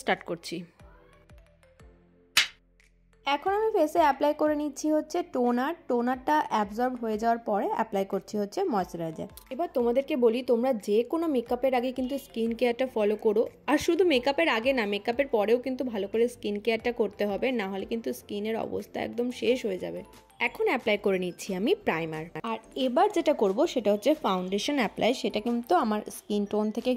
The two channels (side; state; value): both; identical; correlation 1.00